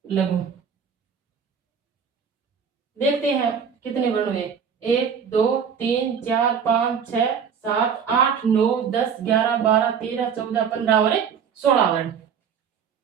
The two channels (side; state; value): left; quieter; 7.1 dB